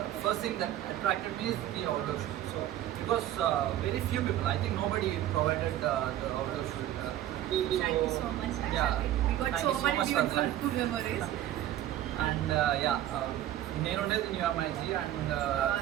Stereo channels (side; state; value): left; quieter; 12.8 dB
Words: First thing that attracted me is the outdoor shoot. So because very few people, I think nobody provided the outdoor shoot. Thank you so much. Yeah, We got thank so you so many much for that. beautiful memories. And నేను ఉండేది new MIG and